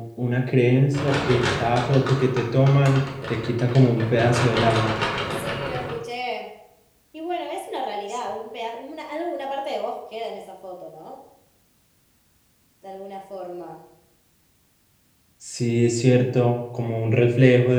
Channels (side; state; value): both; identical; correlation 1.00